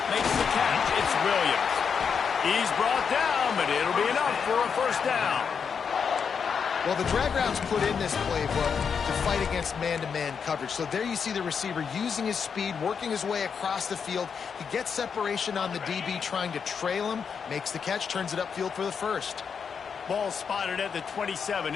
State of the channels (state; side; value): quieter; right; 6.5 dB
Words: Makes the catch. It's Williams. He's brought down, but it'll be enough for a 1st down. Well, the drag routes put in this playbook to fight against man-to-man coverage. So there you see the receiver using his speed, working his way across the field. He gets separation on the DB trying to trail him, makes the catch, turns it upfield for the 1st. Ball spotted at the 27.